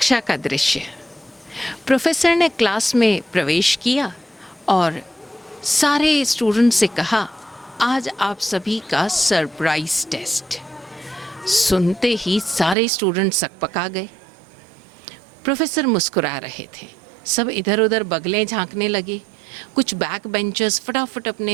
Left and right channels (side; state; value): left; drops out; at 12.8 s